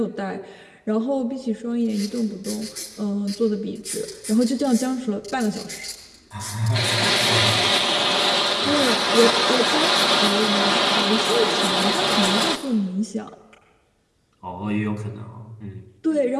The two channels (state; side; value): identical; both; correlation 1.00